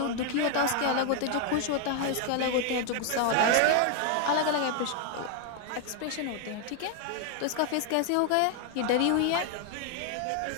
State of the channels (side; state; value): both; different; correlation 0.00